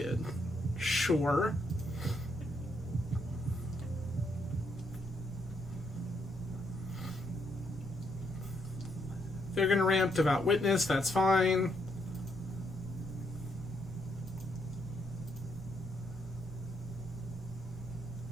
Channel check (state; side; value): normal; both; correlation 0.75